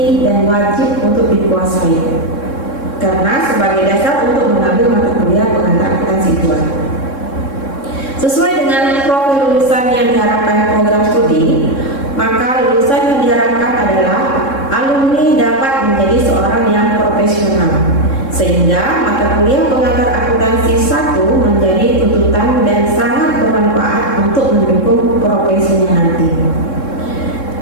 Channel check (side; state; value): right; late; 3.7 ms